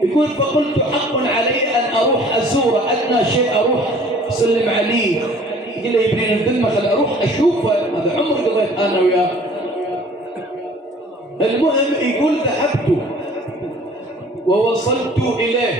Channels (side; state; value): both; normal; correlation 0.52